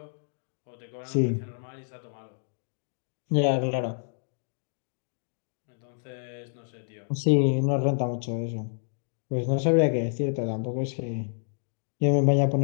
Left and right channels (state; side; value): silent; right; digital silence